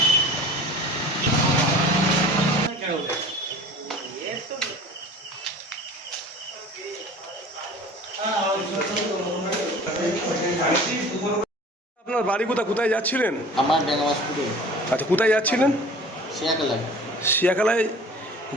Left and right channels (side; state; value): both; normal; correlation 0.43